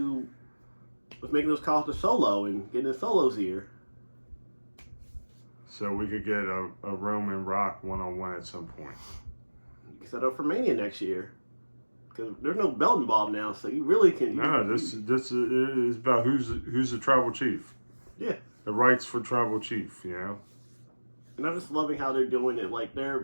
was making those calls to Solo and getting his solos here. So we could get a Roman Rock one-on-one at some point. You can set up for Mania next year. Because there's no belt involved now, so you really can. No, this is about who's the tribal chief. Yeah. The rights for tribal chief, And I'm just loving how they're doing it. Like,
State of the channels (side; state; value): both; inverted; correlation -1.00